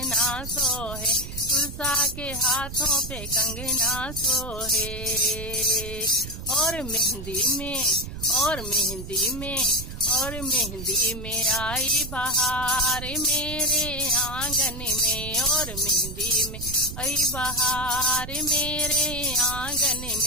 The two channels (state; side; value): noise; right; rumble, 9 dB below the sound